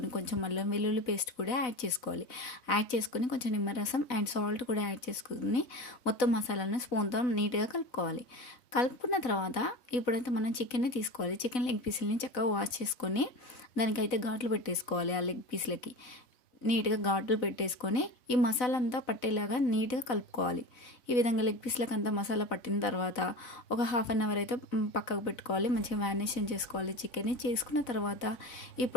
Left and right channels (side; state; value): right; late; 4.0 ms